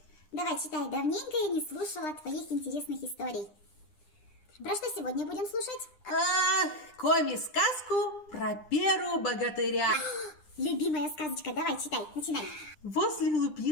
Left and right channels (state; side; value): late; right; 9.9 ms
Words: Давай, читай. Давненько я не слушала твоих интересных историй. Про что сегодня будем слушать? Коми-сказку про Перу богатыря. Любимая сказочка. Давай, читай. Начинай. Возле